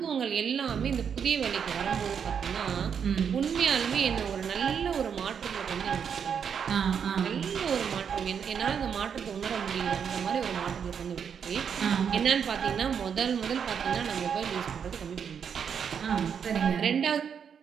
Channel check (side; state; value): left; quieter; 7.3 dB